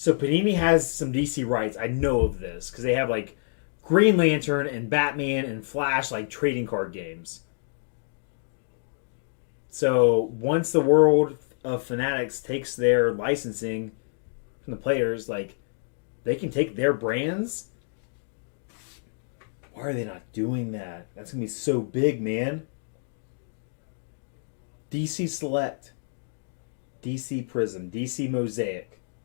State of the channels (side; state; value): right; silent; digital silence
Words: Panini has some DC rights. I know of this because they have like Green Lantern and Batman and Flash, like trading card games. So once the world of Fanatics takes their licensing from the players, like, they can take their brands. Why are they not doing that? That's going to be so big, man. DC Select, DC Prism, DC Mosaic.